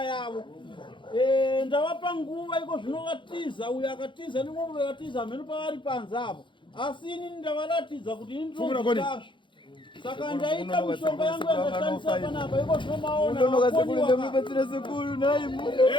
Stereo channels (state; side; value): late; right; 0.23 ms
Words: yavo. Ndavapa nguva iko zvino vatiza uyo akatiza nimwe vatiza mhenu pavari panze apo asi ini ndavaratidza kuti ini ndinozvazvo saka ndaita mishonga yangu yakashandisa panapa iko zvinomaona